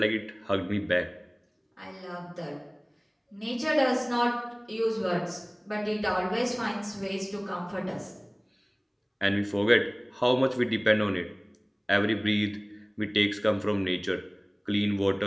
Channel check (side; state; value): both; identical; correlation 1.00